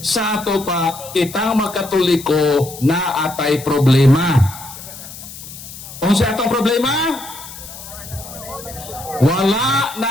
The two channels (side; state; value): left; noise; hiss, 14 dB below the sound